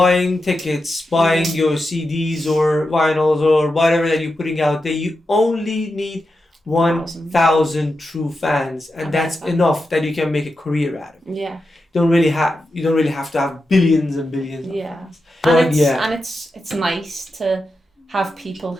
tickets, buying your CDs or vinyls or whatever that you're putting out there, you only need 1,000 true fans, and that's enough that you can make a career out of it. Yeah. You don't really have to have billions and billions of fans. And it's nice to have people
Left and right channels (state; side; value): normal; both; correlation 0.89